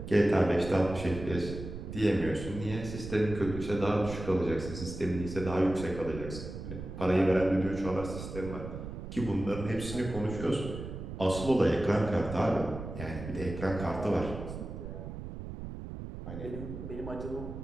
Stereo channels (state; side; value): noise; right; rumble, 9 dB below the sound